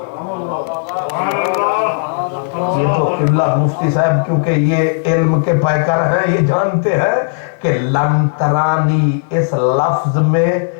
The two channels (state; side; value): silent; right; digital silence